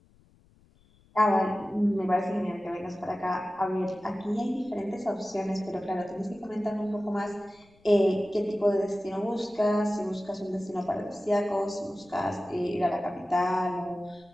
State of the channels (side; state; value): left; noise; rumble, 30 dB below the sound